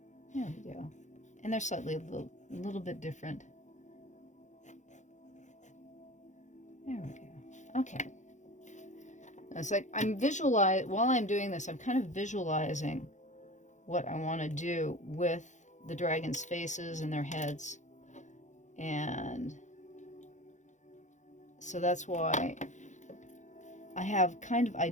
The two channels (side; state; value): right; late; 0.35 ms